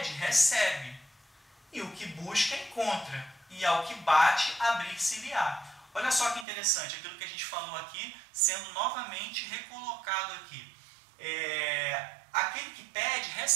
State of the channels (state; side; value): drops out; left; at 6.5 s